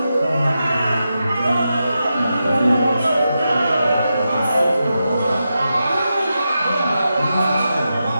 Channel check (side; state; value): both; inverted; correlation -0.89